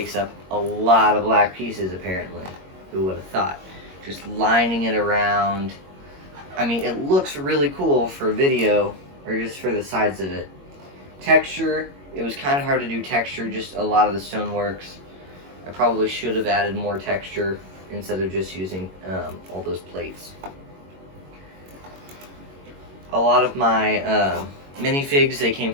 up a lot of black pieces apparently. Who would have thought? Just lining it around. I mean, it looks really cool for video, or just for the sides of it. Texture, it was kind of hard to do texture, just a lot of the stoneworks. I probably should have added more texture instead of just using all those plates. a lot of my minifigs, they came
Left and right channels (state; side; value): late; left; 21 ms